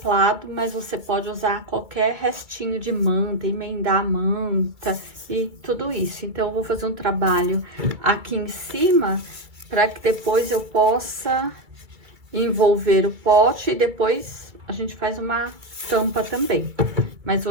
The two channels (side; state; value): left; late; 2.5 ms